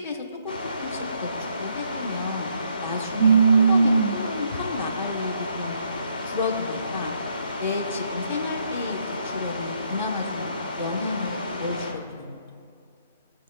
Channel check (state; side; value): inverted; both; correlation -0.72